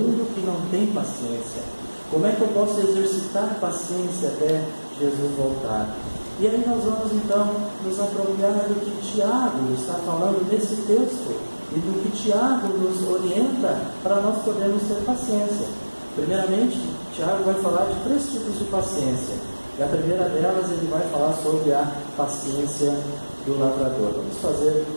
que não tem paciência? Como é que eu posso exercitar paciência até Jesus voltar? E aí nós vamos então nos apropriar do que Tiago está falando nesse texto e do que Tiago nos orienta para nós podermos ter paciência. Primeiramente, Tiago vai falar de 3 tipos de paciência. E a primeira delas, ele vai falar sobre a paciência do lavrador. Vamos fazer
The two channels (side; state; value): both; inverted; correlation -1.00